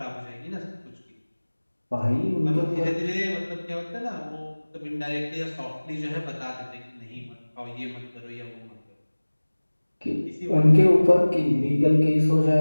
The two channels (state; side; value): inverted; both; correlation -1.00